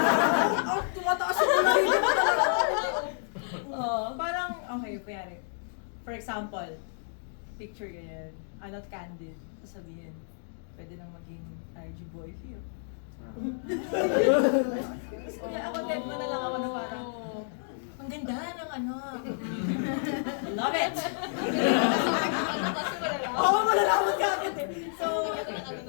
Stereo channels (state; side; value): silent; right; digital silence